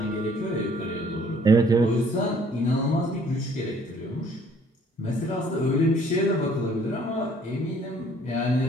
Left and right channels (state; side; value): normal; both; correlation 0.59